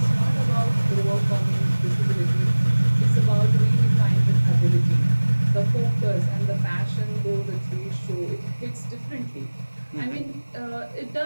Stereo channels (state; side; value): inverted; both; correlation -1.00